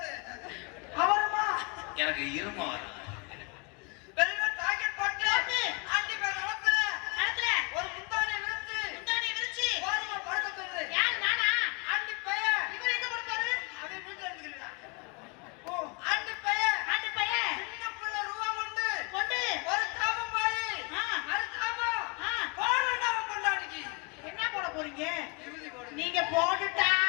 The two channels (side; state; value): right; quieter; 31.3 dB